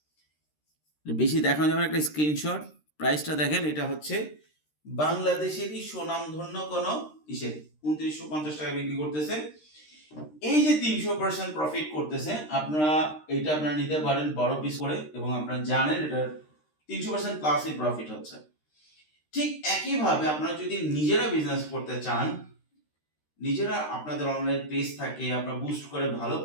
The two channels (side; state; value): right; late; 13 ms